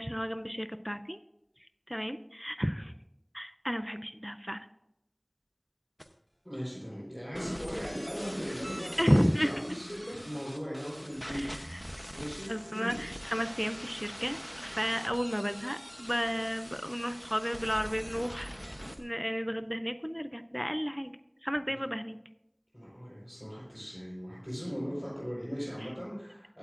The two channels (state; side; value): identical; both; correlation 1.00